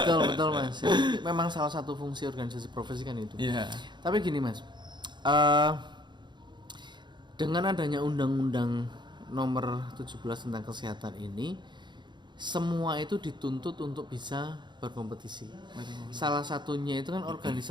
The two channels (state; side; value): late; left; 0.22 ms